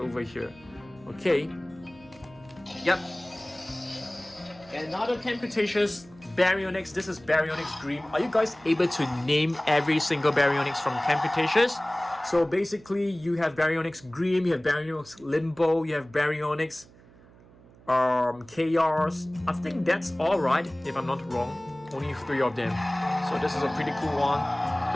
here. Okay. Yep. Another Camp Cretaceous Baryonyx. This is Baryonyx Green. Are you guys able to name every single Baryonyx from Camp Cretaceous? So basically, you have Baryonyx Green, you have Baryonyx Limbo, you have Baryonyx Chaos. I think that's all right, if I'm not wrong. Only 3 of them. So this is a pretty cool one.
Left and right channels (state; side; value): noise; right; hum, 24 dB below the sound